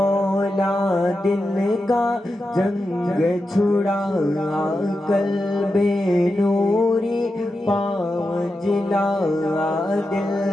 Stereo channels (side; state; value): both; normal; correlation 0.89